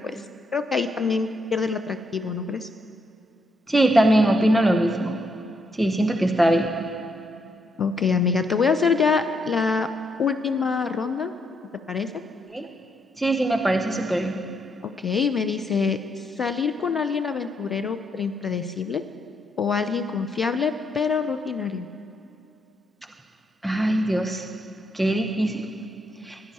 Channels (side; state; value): both; normal; correlation 0.77